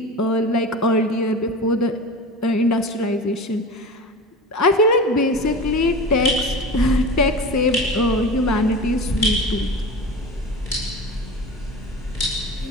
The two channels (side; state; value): both; normal; correlation 0.31